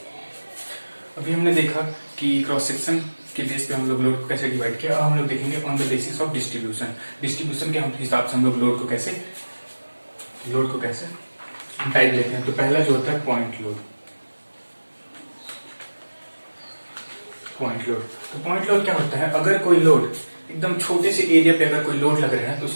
अभी हमने देखा कि क्रॉस सेक्शन के बेस पे हम लोग लोड को कैसे डिवाइड किया। अब हम लोग देखेंगे on the basis of distribution के हिसाब से हम लोग लोड को कैसे टाइप लेते हैं। तो पहला जो होता है पॉइंट लोड। तो पॉइंट लोड क्या होता है, अगर कोई लोड एकदम छोटे से एरिया पे अगर कोई लोड लग रहा है तो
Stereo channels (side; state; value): both; inverted; correlation -1.00